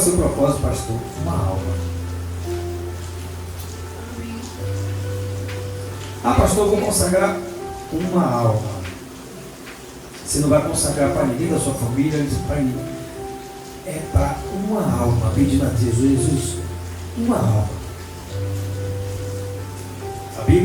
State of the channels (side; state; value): both; identical; correlation 1.00